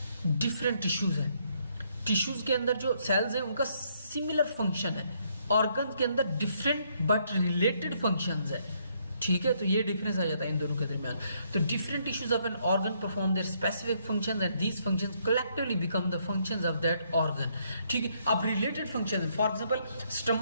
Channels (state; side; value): inverted; both; correlation -0.71